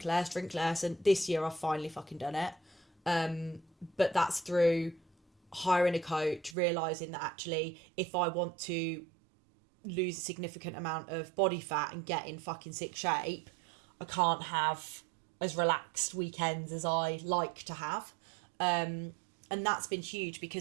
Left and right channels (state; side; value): drops out; left; at 6.6 s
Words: less. And this year I've finally fucking done it. But that's through hiring a coach, realising that actually, if I want to lose a significant amount of body fat and get in fucking sick shape, I can't have as relaxed weekends as I like to have. And that's been huge,